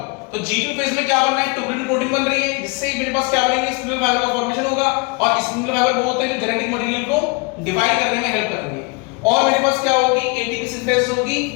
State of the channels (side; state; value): right; quieter; 29.2 dB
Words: तो G2 फेज में क्या बन रहा है, ट्यूबिन प्रोटीन बन रही है, जिससे मेरे पास क्या बनेंगे, स्पिंडल फाइबर का फॉर्मेशन होगा, और स्पिंडल फाइबर वो होते हैं जो जेनेटिक मटेरियल को डिवाइड करने में हेल्प करेंगे। और मेरे पास क्या होगी, एटीपी सिंथेसिस होगी,